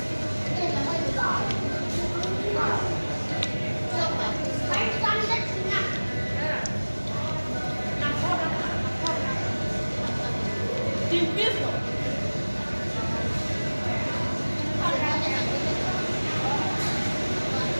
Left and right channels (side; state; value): both; inverted; correlation -1.00